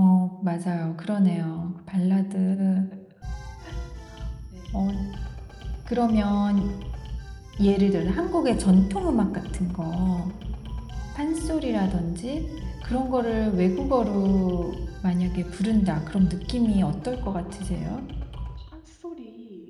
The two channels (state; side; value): identical; both; correlation 1.00